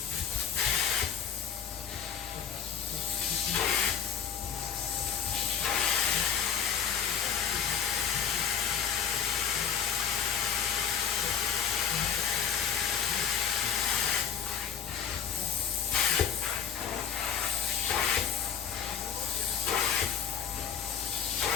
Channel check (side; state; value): right; quieter; 7.7 dB